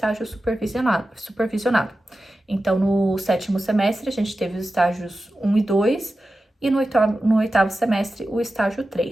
supervisionado. Então, no sétimo semestre, a gente teve os estágios 1 e 2, e no oitavo semestre, o estágio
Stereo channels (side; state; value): both; normal; correlation 0.93